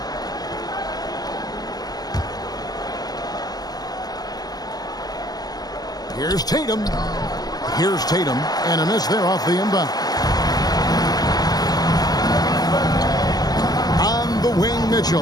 Here's Tatum. Here's Tatum. And a miss there off the inbound. On the wing,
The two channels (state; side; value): late; right; 0.19 ms